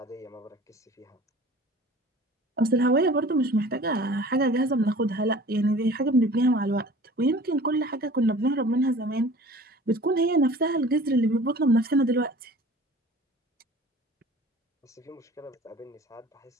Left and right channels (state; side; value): normal; both; correlation 0.45